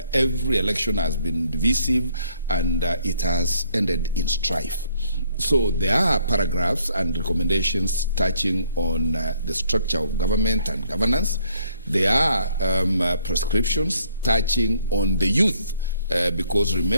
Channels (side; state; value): both; inverted; correlation -0.66